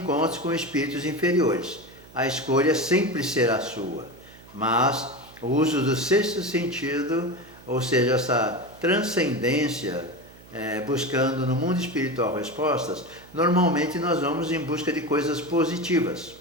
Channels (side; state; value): right; noise; hum, 22 dB below the sound